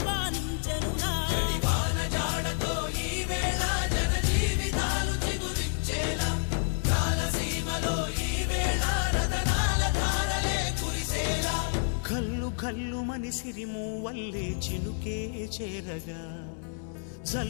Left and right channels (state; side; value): silent; right; digital silence